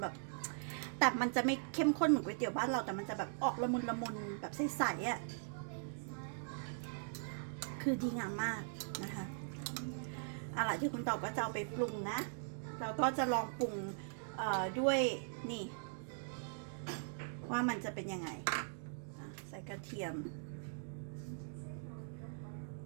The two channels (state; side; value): silent; left; digital silence